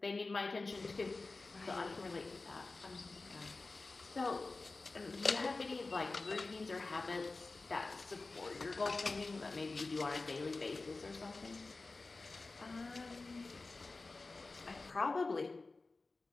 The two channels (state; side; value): quieter; right; 3.5 dB